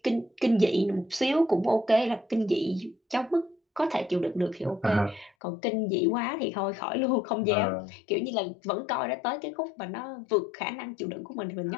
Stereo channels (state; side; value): drops out; right; at 5.3 s